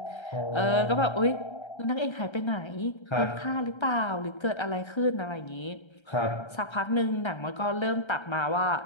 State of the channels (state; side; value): late; right; 1.3 ms